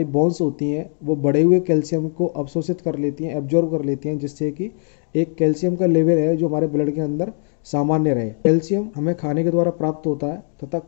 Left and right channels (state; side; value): silent; right; 56 dB below the other